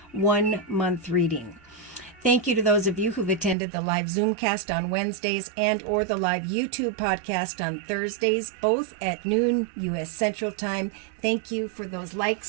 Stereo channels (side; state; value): left; drops out; at 3.6 s